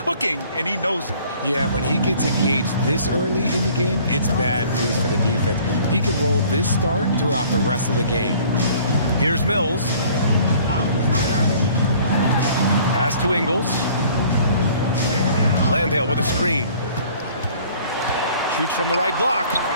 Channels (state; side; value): inverted; both; correlation -0.53